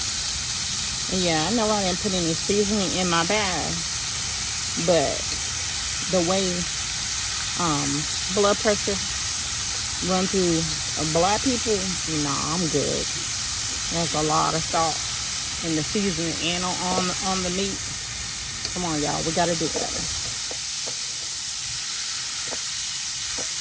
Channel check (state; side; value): identical; both; correlation 1.00